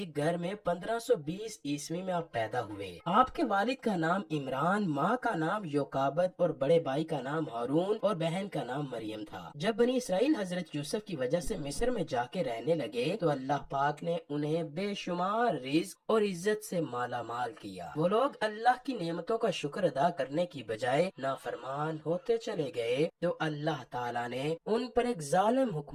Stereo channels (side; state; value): both; identical; correlation 1.00